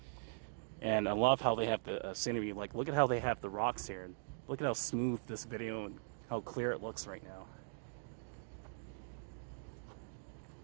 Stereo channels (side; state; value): left; silent; digital silence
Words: And I love how they have the scenery. Like, look at how they have the rocks here. Look at how smooth this video and how clear it looks right now.